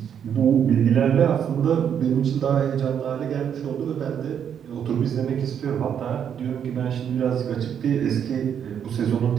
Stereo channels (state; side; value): quieter; left; 8.5 dB